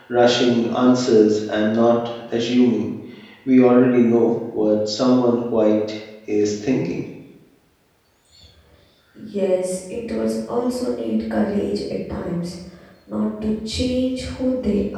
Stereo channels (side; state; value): both; identical; correlation 1.00